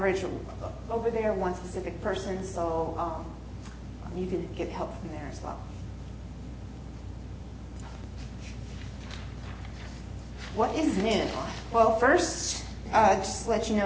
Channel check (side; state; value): both; identical; correlation 1.00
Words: over there, one specific person, so you can get help from there as well. What is new? Well, first, just to let you